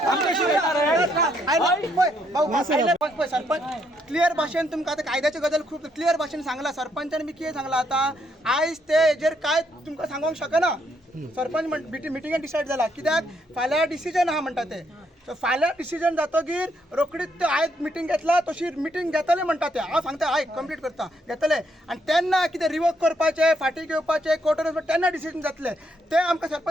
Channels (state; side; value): normal; both; correlation 0.74